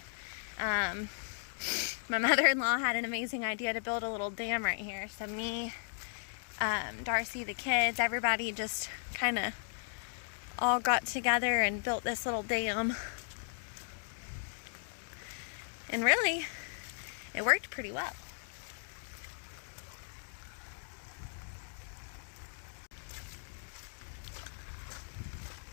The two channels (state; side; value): silent; right; digital silence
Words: My mother-in-law had an amazing idea to build a little dam right here. So me, Darcy, the kids, everybody just kind of all got together and built this little dam. And really, it worked pretty well.